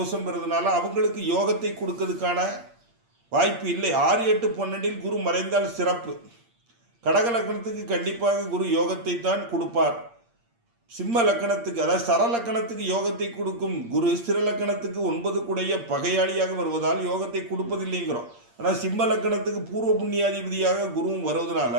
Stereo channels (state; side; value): late; left; 8.6 ms